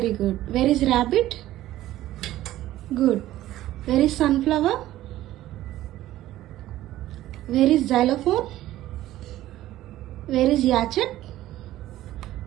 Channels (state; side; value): quieter; left; 14.6 dB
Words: good. Where is rabbit? Good. Where is sunflower? Where is xylophone? Where is yacht?